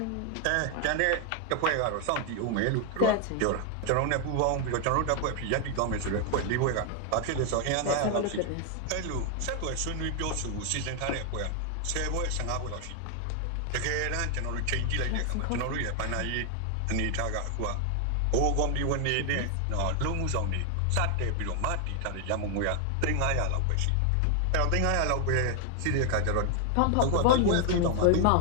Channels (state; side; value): different; both; correlation 0.00